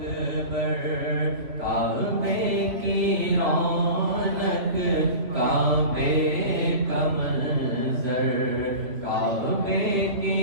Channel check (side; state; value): left; late; 3.2 ms